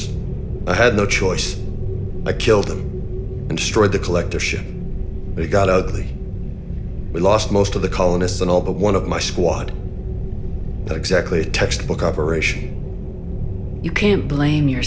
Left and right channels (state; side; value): identical; both; correlation 1.00